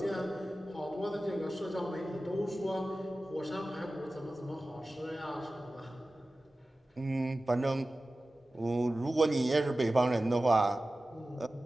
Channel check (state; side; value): normal; both; correlation 0.96